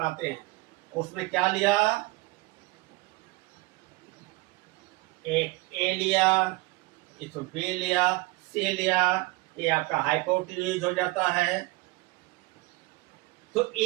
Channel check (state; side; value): quieter; left; 22.0 dB